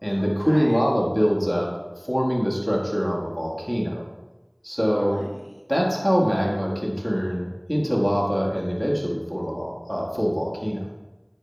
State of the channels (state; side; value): identical; both; correlation 1.00